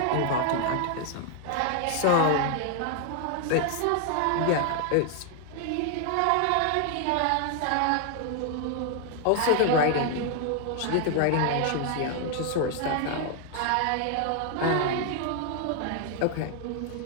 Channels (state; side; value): different; both; correlation 0.00